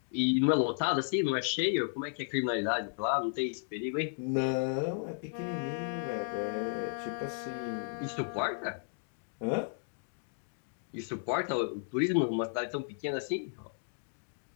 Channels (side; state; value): right; silent; digital silence